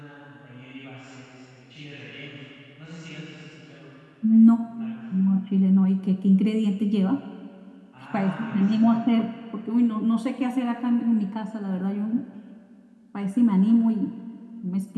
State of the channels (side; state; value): both; identical; correlation 1.00